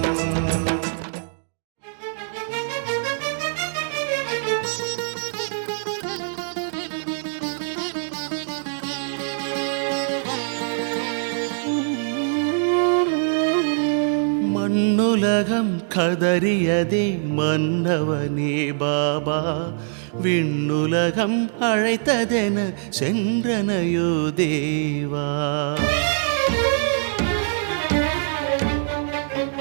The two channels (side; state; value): left; silent; digital silence